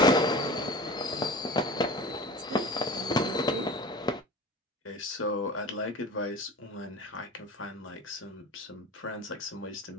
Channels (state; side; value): normal; both; correlation 0.35